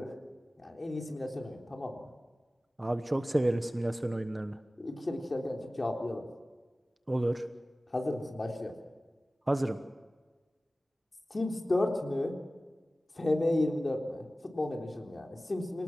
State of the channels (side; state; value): both; normal; correlation 0.97